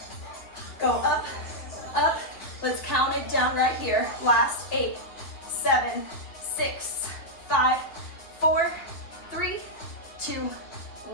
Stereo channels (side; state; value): right; late; 2.8 ms